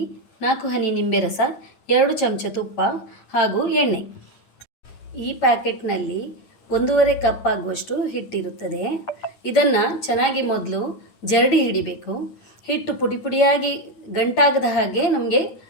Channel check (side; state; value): right; late; 9.3 ms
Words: 4 ಹನಿ ನಿಂಬೆ ರಸ, 2 ಚಮಚ ತುಪ್ಪ ಹಾಗೂ ಎಣ್ಣೆ. ಈ ಪ್ಯಾಕೆಟ್ನಲ್ಲಿ 1.5 ಕಪ್ ಆಗುವಷ್ಟು ಹಿಟ್ಟಿರುತ್ತದೆ. ಇದನ್ನು ಚೆನ್ನಾಗಿ ಮೊದಲು ಜರಡಿ ಹಿಡಿಬೇಕು. ಹಿಟ್ಟು ಪುಡಿ ಪುಡಿಯಾಗಿ ಗಂಟಾಗದ ಹಾಗೆ ನಮಗೆ